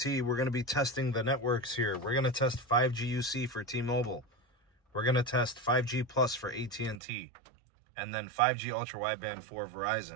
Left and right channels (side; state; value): left; drops out; at 7.0 s